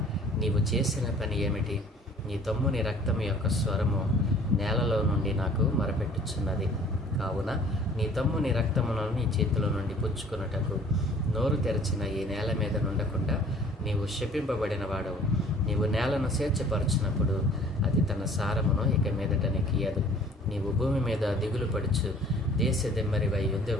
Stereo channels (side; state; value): both; normal; correlation 0.52